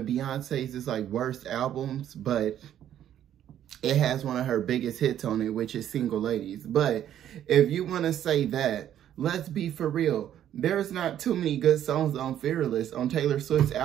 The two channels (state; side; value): quieter; left; 10.8 dB